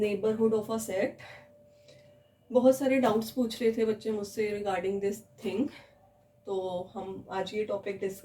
of a set. बहुत सारे doubts पूछ रहे थे बच्चे मुझसे regarding this thing, तो हम आज ये टॉपिक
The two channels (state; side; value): identical; both; correlation 1.00